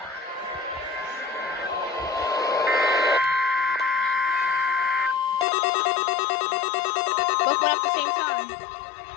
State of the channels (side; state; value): right; drops out; at 5.5 s